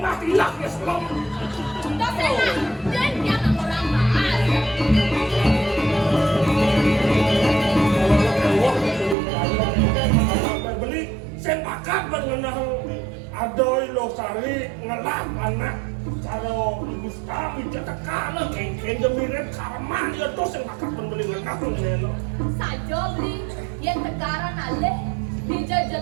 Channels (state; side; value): drops out; left; at 9.2 s